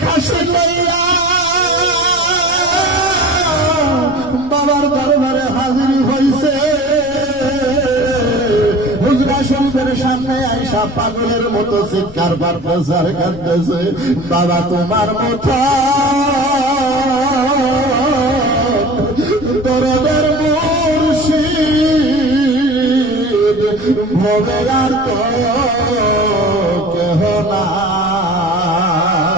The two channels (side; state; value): left; noise; rumble, 18 dB below the sound